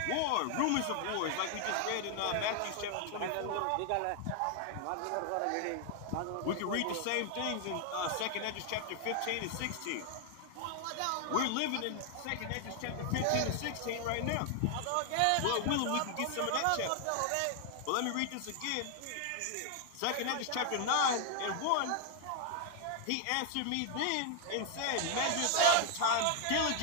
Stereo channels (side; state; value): both; different; correlation 0.00